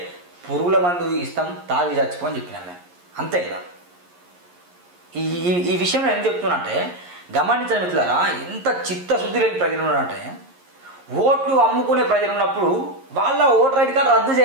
పురుగుల మందు ఇస్తాం తాగి చచ్చిపోని చెప్పినాను నేను. అంతే కదా. ఈ విషయం నేను ఎందుకు చెప్తున్నా అంటే గమనించండి మిత్రులారా, ఎంత చిత్తశుద్ధి లేని ప్రజలు ఉన్నారంటే ఓట్లు అమ్ముకునే ప్రజలు ఉన్నప్పుడు వాళ్ళ ఓటర్ ఐడి కార్డు రద్దు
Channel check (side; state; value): left; late; 11 ms